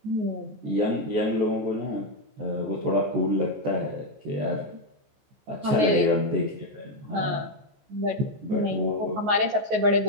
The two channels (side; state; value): left; late; 14 ms